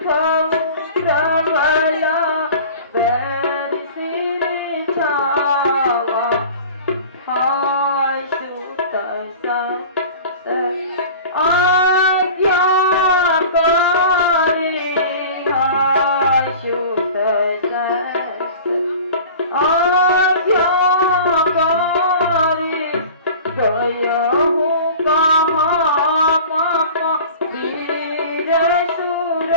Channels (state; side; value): inverted; both; correlation -0.40